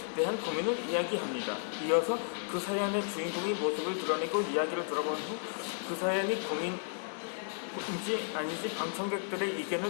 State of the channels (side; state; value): right; silent; 55 dB below the other